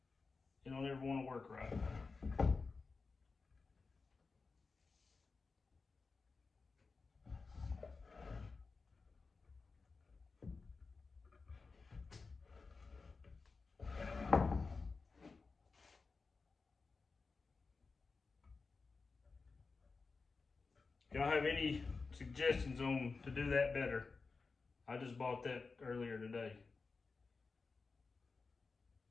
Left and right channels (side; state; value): right; quieter; 4.3 dB